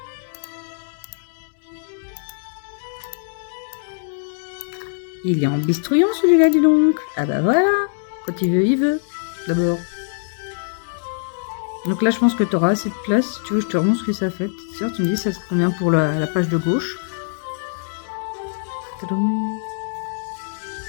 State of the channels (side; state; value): right; silent; digital silence